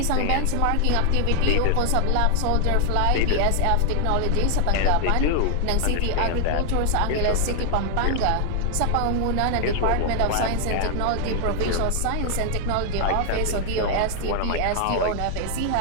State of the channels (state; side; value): different; both; correlation 0.00